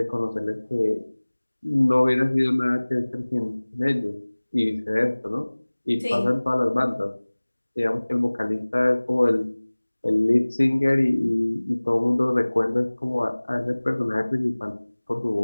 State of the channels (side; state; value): both; inverted; correlation -1.00